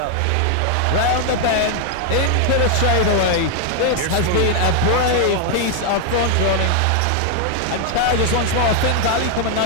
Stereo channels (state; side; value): different; both; correlation 0.01